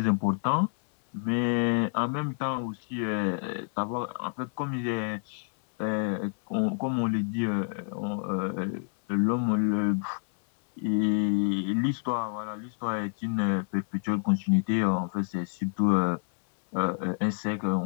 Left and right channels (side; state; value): right; silent; 59 dB below the other